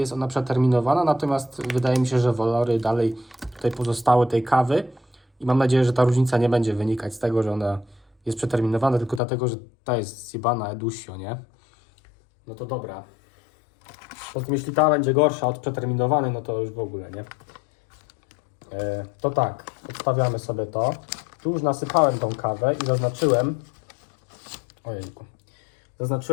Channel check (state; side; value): drops out; right; at 9.2 s